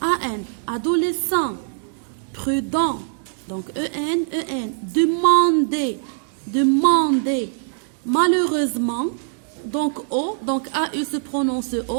A-N. Adolescent, prudent. Donc, E-N, E-N. Demander, demander. Malheureusement, donc, O, donc A-U se prononce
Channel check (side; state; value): left; silent; digital silence